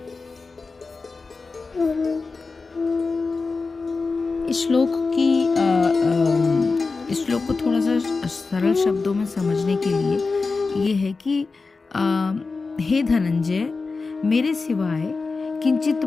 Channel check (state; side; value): quieter; right; 4.1 dB